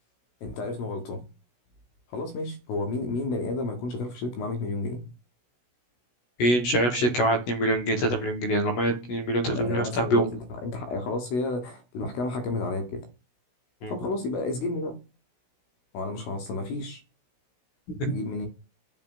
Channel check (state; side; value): late; right; 16 ms